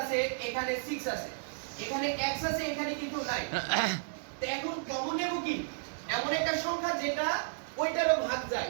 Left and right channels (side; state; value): left; silent; digital silence